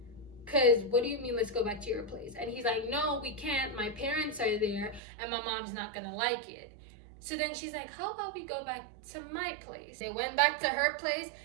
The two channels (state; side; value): drops out; left; at 5.0 s